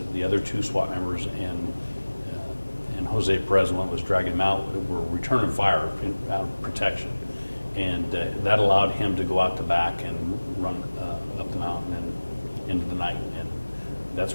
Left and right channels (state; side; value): inverted; both; correlation -1.00